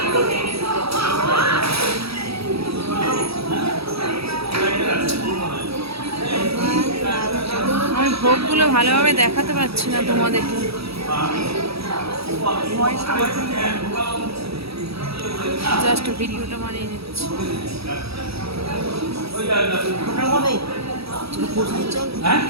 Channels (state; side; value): late; left; 0.77 ms